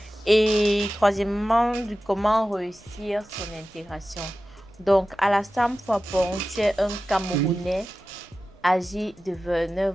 Et troisièmement, de comment réussir son intégration. Donc, Alassane Fapon, tu es un Camerounais âgé de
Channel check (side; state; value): both; normal; correlation 0.94